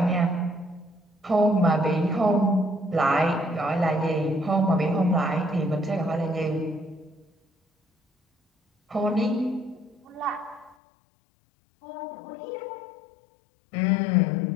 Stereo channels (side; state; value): right; drops out; at 10.8 s